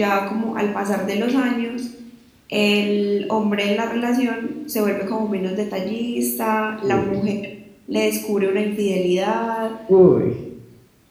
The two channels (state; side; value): identical; both; correlation 1.00